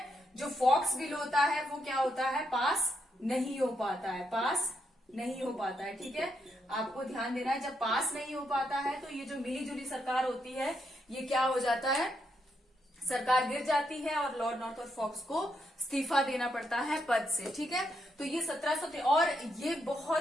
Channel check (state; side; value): normal; both; correlation 0.79